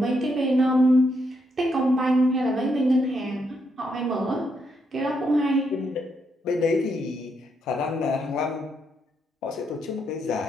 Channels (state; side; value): normal; both; correlation 0.78